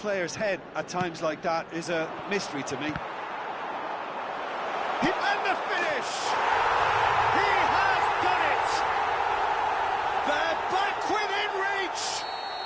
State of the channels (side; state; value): both; identical; correlation 1.00